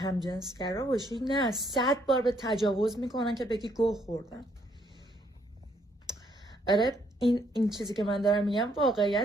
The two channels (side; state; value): both; normal; correlation 0.70